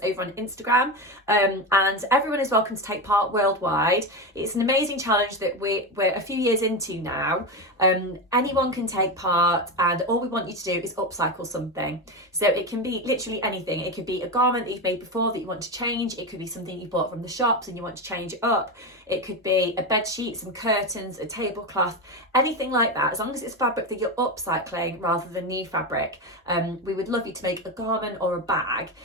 over on Instagram, and everyone is welcome to take part worldwide. It's an amazing challenge that we're a few years into now. Anyone can take part, and all we want you to do is upcycle something. So it can be literally anything. It could be a garment that you've made before that you want to change. It could be something you bought from the shops and you want to change it up. It could be a bed sheet, some curtains, a tablecloth, anything like that. As long as it's fabric that you're upcycling rather than new fabric, we would love you to make a garment or a bag,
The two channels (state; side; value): normal; both; correlation 0.16